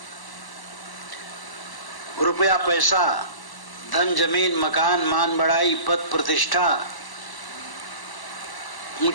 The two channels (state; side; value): late; right; 1.0 ms